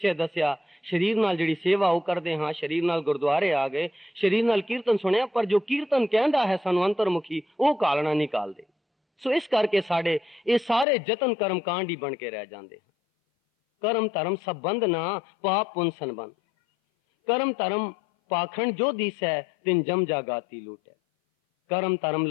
ਦੱਸਿਆ, ਸਰੀਰ ਨਾਲ ਜਿਹੜੀ ਸੇਵਾ ਉਹ ਕਰਦੇ ਹਾਂ, ਸਰੀਰ ਨਾਲ ਗੁਰਦੁਆਰੇ ਆ ਗਏ, ਸਰੀਰ ਨਾਲ ਕੀਰਤਨ ਸੁਣਿਆ, ਪਰ ਜੋ ਕੀਰਤਨ ਕਹਿੰਦਾ ਹੈ ਸਾਨੂੰ ਅੰਤਰਮੁਖੀ, ਉਹ ਕਾਲਣਾ ਨਹੀਂ ਕਾਲਦੇ। ਸੋ ਇਸ ਕਰਕੇ ਸਾਡੇ ਇਹ ਸਾਰੇ ਯਤਨ ਕਰਮਕਾਂਡ ਹੀ ਬਣ ਕੇ ਰਹਿ ਜਾਂਦੇ ਹਨ। ਕਰਮ ਧਰਮ ਸਭ ਬੰਦ ਨਾ, ਪਾਪ ਪੁੰਨ ਸੰਬੰਧ। ਕਰਮ ਧਰਮ पाखंड जो दिस है, तिन जम जागाती लूट है। करम धर्म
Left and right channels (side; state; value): right; drops out; at 10.9 s